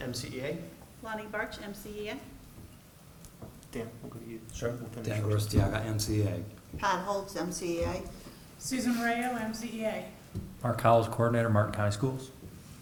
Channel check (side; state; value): both; identical; correlation 1.00